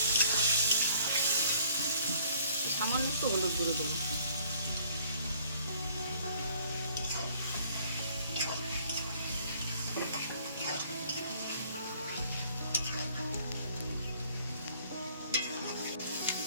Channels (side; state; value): both; inverted; correlation -0.58